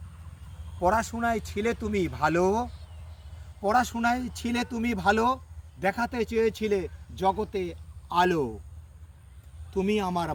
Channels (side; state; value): both; identical; correlation 1.00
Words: পড়াশোনায় ছিলে তুমি ভালো, পড়াশোনায় ছিলে তুমি ভালো, দেখাতে চেয়েছিলে জগতে আলো। তুমি আমার